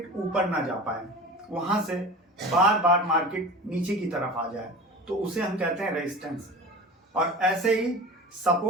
ऊपर ना जा पाए, वहां से बार बार मार्केट नीचे की तरफ आ जाए, तो उसे हम कहते हैं रेजिस्टेंस। और ऐसे ही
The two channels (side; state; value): both; normal; correlation 0.34